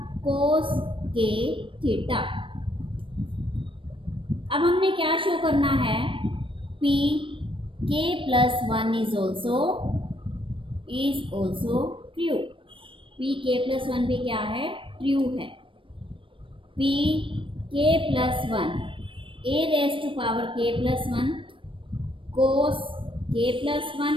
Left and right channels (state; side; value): late; left; 0.25 ms